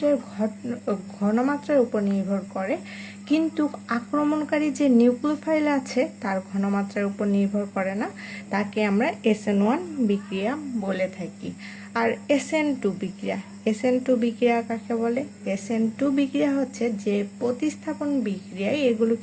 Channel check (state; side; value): identical; both; correlation 1.00